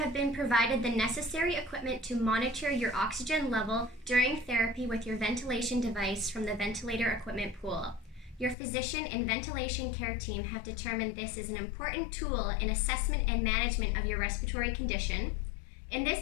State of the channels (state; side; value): drops out; right; at 8.6 s